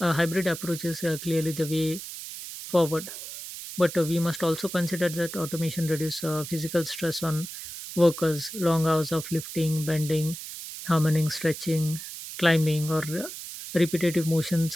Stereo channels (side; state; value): right; noise; hiss, 10 dB below the sound